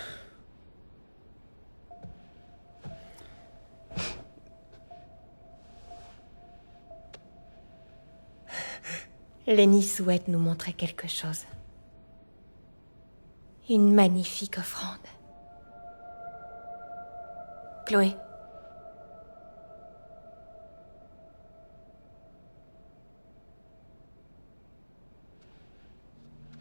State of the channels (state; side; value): inverted; both; correlation -1.00